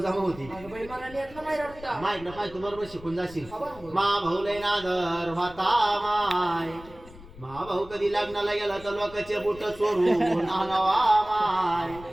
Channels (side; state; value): left; noise; rumble, 19 dB below the sound